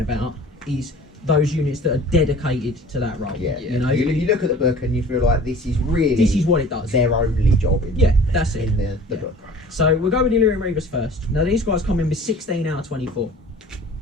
is those units that are dedicated to that role. Yeah, You know, you look at the book and you feel like this is really this is what it does. their only job in Yeah, that's it. in the Yeah. book. So we'll go with the Illyrian Reavers first. Now these guys come in with 16 out of 24.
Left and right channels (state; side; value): normal; both; correlation 0.46